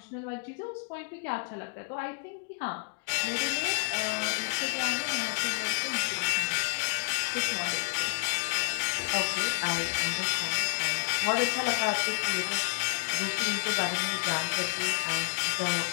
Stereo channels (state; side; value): quieter; right; 31.6 dB